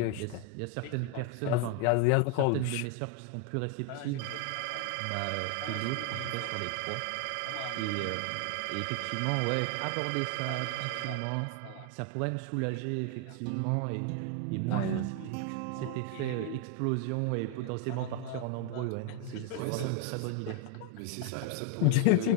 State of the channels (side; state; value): both; different; correlation 0.01